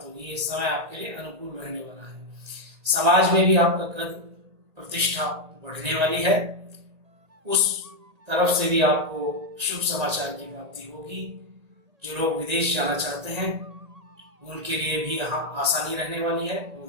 होगी। ये समय आपके लिए अनुकूल रहने वाला है। समाज में भी आपका कद प्रतिष्ठा बढ़ने वाली है। उस तरफ से भी आपको शुभ समाचार की प्राप्ति होगी। जो लोग विदेश जाना चाहते हैं उनके लिए भी यहाँ आसानी रहने वाली है। वो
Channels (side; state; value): left; late; 1.8 ms